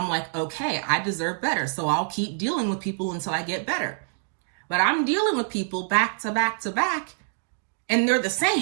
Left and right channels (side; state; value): left; silent; digital silence